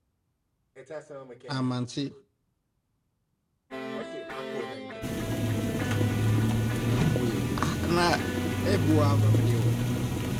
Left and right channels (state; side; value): identical; both; correlation 1.00